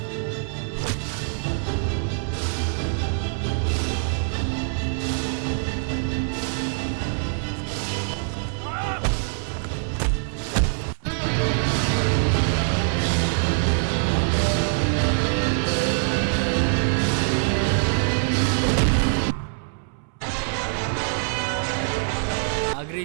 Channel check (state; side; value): silent; left; 62 dB below the other